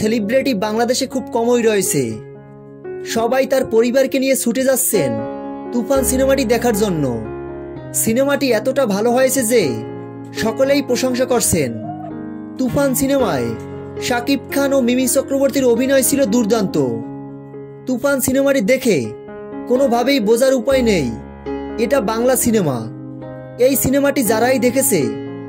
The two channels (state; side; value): identical; both; correlation 1.00